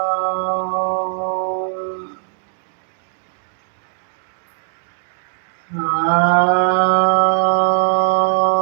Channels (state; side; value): silent; left; digital silence